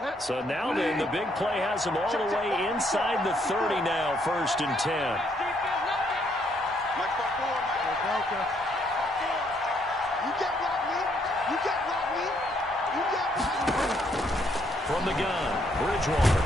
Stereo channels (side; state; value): both; normal; correlation 0.71